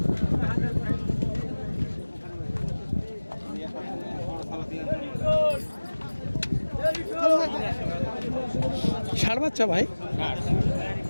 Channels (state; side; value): inverted; both; correlation -1.00